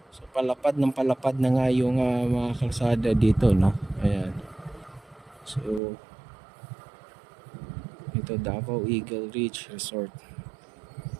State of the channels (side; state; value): left; drops out; at 5.8 s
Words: So palapad na nga yung mga kalsada dito, no. Ayan. So ito, Davao Eagle Ridge Resort.